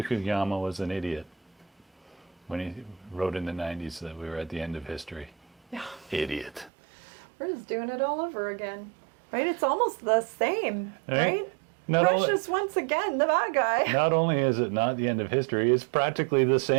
Fukuyama was an idiot when he wrote in the 90s that we were at the end of history. Yeah. Idiot. We're just doing it all over again, right? It's almost the same, Right. right? Not only- Russia's once again the bad guy. Not only is it not the end of history, it's practically the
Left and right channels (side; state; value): left; drops out; at 6.7 s